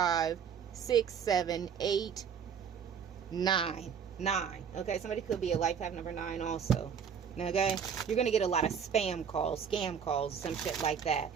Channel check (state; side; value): quieter; left; 7.3 dB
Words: 6, 7, 8, 9. 9. Okay, somebody could be a life path number 9 also. Okay, you're gonna get a lot of spam calls, scam calls, some shit like that.